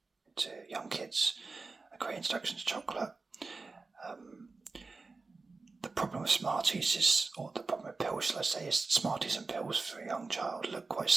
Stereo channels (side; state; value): left; quieter; 3.9 dB